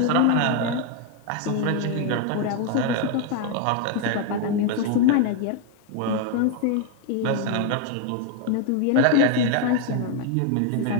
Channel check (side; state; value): both; different; correlation 0.01